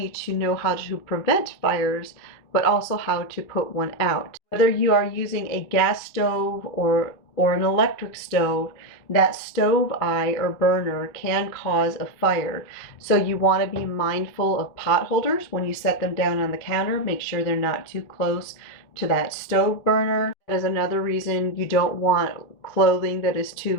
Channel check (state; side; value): late; right; 2.4 ms